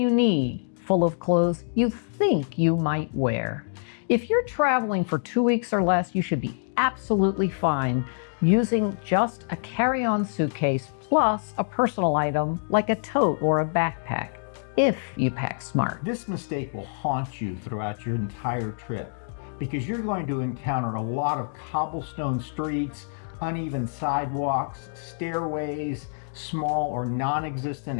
need, full of clothes you think you might wear. If you're traveling for 2 weeks or less, you should be absolutely fine using just a carry-on suitcase plus a personal item like a tote or a backpack, if you pack smart. This mistake will haunt you throughout your entire trip because you're going to encounter a lot of cobblestone streets, uneven sidewalks, stairways, small or non-existent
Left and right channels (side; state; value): right; silent; digital silence